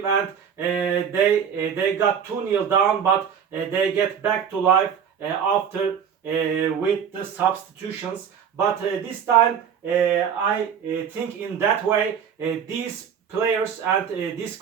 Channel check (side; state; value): left; quieter; 7.8 dB